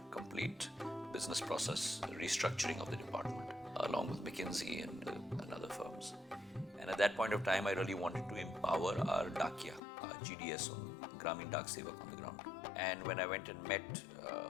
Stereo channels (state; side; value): drops out; right; at 9.8 s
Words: complete business process restructuring of the department. along with McKinsey and other firms. And at that point of time, I really wanted to empower our Dakia, our GDS, on Gramin Dak Sevak on the ground. And when I went and met